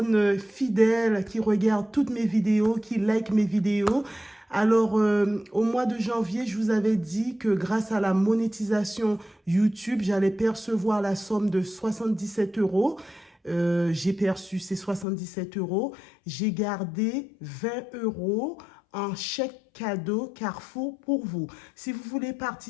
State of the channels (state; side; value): drops out; right; at 15.1 s